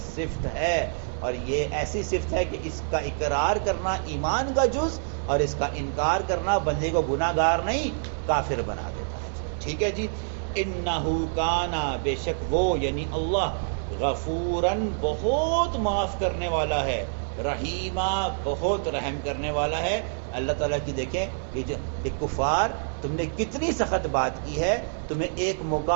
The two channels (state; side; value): silent; left; digital silence